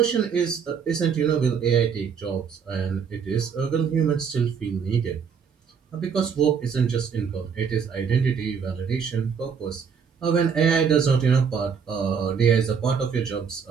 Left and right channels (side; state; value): left; quieter; 6.6 dB